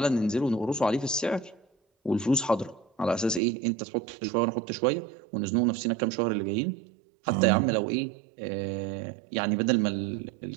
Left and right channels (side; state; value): left; drops out; at 3.4 s